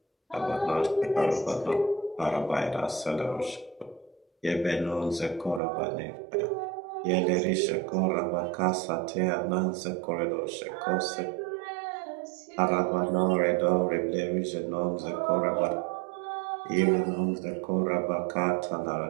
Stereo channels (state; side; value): drops out; left; at 5.6 s